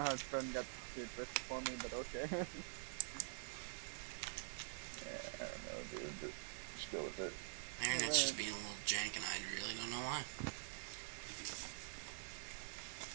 Trent got to first for me, but okay. yeah, I don't know, dude, but just go with it. My internet's just being a little jank, and I really don't know why.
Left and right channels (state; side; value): silent; left; digital silence